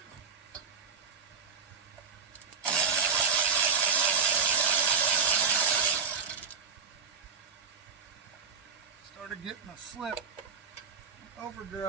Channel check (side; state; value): left; quieter; 5.8 dB